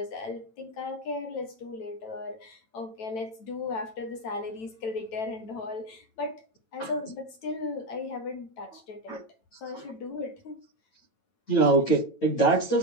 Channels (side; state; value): right; late; 9.0 ms